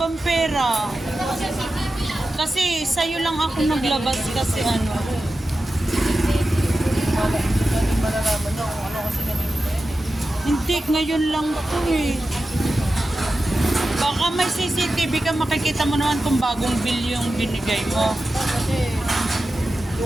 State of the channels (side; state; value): both; normal; correlation 0.93